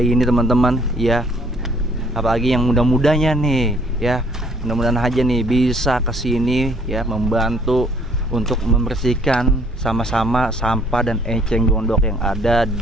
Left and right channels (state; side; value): normal; both; correlation 0.61